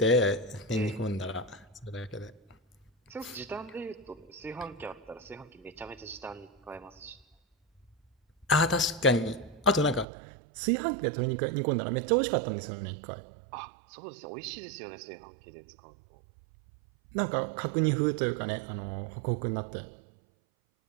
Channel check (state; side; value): drops out; left; at 10.1 s